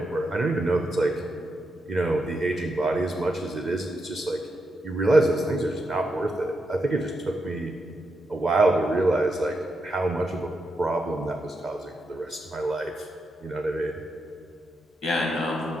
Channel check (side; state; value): both; normal; correlation 0.84